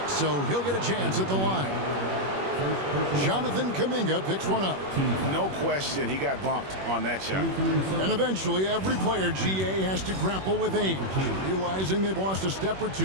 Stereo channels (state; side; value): late; left; 21 ms